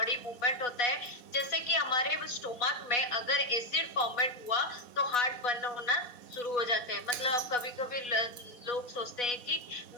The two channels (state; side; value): late; right; 4.1 ms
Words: मूवमेंट होता है, जैसे कि हमारे स्टोमक में अगर एसिड फॉर्मेट हुआ तो हार्ट बर्न होना शुरू हो जाते हैं। मतलब कभी कभी लोग सोचते हैं कि